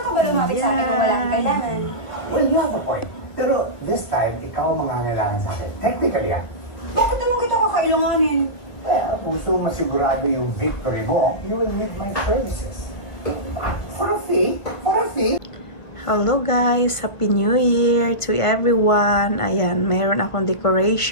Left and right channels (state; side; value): late; right; 1.2 ms